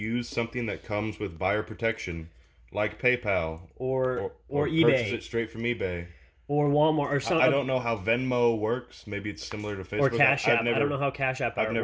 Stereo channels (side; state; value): both; identical; correlation 1.00